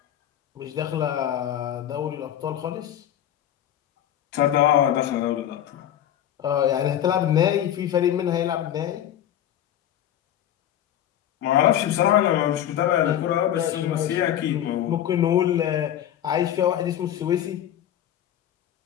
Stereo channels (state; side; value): quieter; right; 11.1 dB